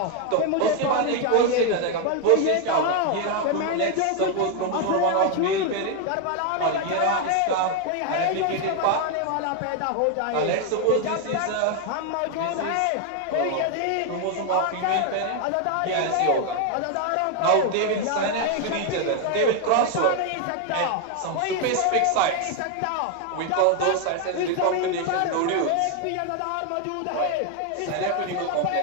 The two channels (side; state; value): both; different; correlation 0.01